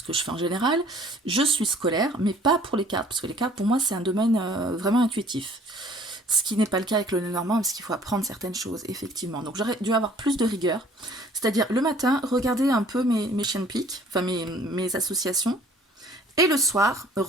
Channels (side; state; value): both; normal; correlation 0.54